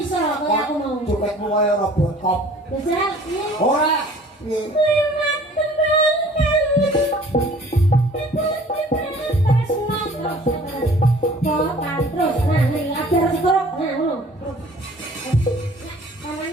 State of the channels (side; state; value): both; normal; correlation 0.51